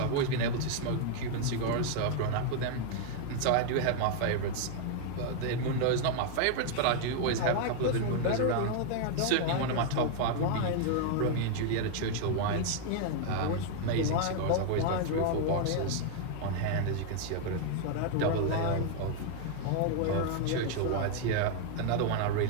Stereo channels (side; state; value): both; different; correlation 0.00